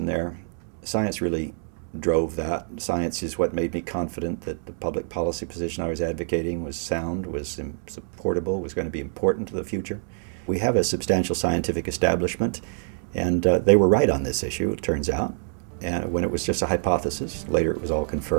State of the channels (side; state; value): left; silent; digital silence